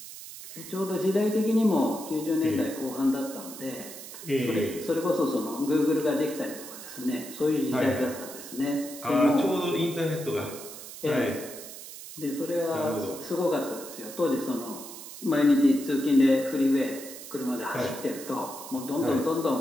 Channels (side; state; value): right; noise; hiss, 13 dB below the sound